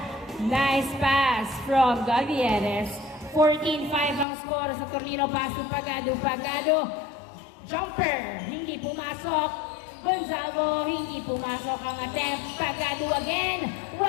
Nice pass from Gabieres. 14-5 ang score sa Tornino. Pass to Pagado. Jumper, hindi pumasok. Gonzalo, hindi pumasok ang attempt. Pagado again,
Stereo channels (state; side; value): drops out; right; at 4.2 s